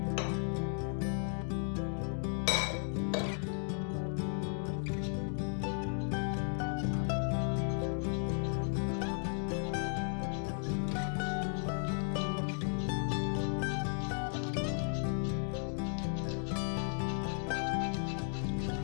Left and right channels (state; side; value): silent; right; 54 dB below the other